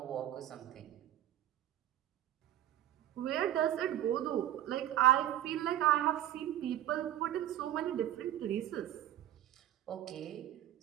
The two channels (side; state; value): left; quieter; 12.8 dB